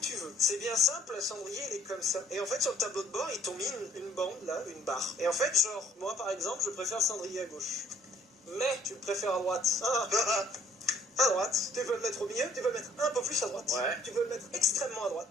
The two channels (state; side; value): normal; both; correlation 0.60